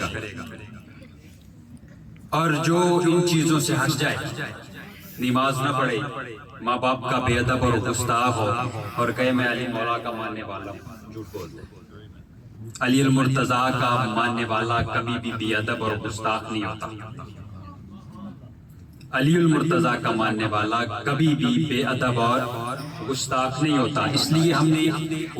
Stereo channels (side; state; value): both; identical; correlation 1.00